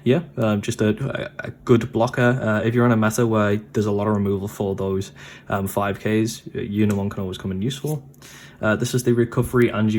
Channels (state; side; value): identical; both; correlation 1.00